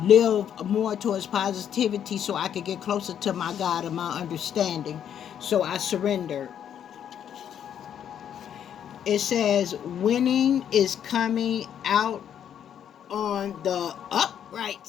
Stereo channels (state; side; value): quieter; right; 9.3 dB